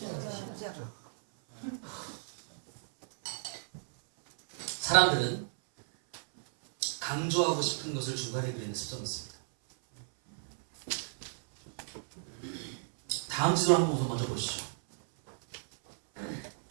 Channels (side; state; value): left; silent; 56 dB below the other